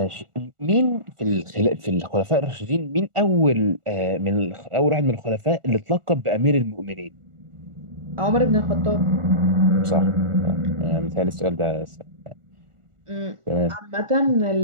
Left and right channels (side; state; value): left; late; 1.4 ms